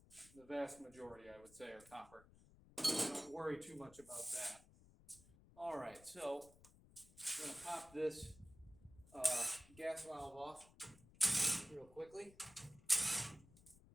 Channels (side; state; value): left; noise; rumble, 23 dB below the sound